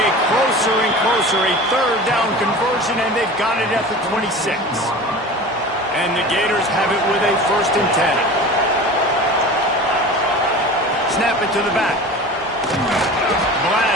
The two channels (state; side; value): normal; both; correlation 0.36